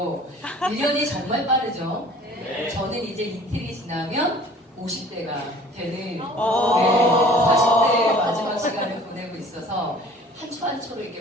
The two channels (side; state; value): both; normal; correlation 0.49